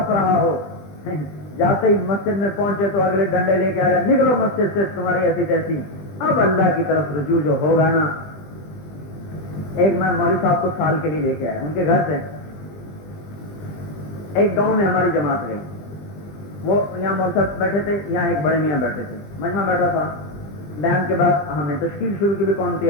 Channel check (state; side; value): late; right; 20 ms